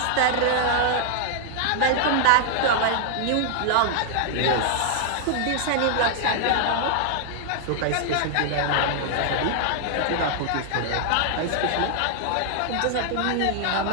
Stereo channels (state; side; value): different; both; correlation 0.00